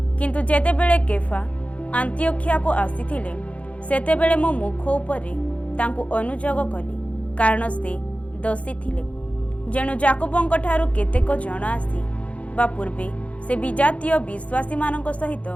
କିନ୍ତୁ ଯେତେବେଳେ କେଫା ଆନ୍ତିଓଖିଆକୁ ଆସିଥିଲେ, ସେତେବେଳେ ମୁଁ ମୁଖ ଉପରେ ତାଙ୍କୁ ଅନୁଯୋଗ କଲି, କାରଣ ସେ ଦୋଷୀ ଥିଲେ। ଯେଣୁ ଯାକୁବଙ୍କ ଠାରୁ କେତେକ ଜଣ ଆସି ବା ପୂର୍ବେ ସେ ବିଜାତୀୟ ବିଶ୍ୱାସୀମାନଙ୍କ ସହିତ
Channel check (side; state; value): right; late; 0.064 ms